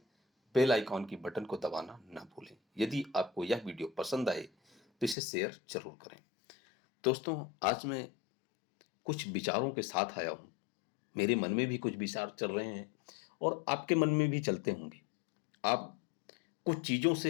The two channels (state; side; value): drops out; right; at 5.2 s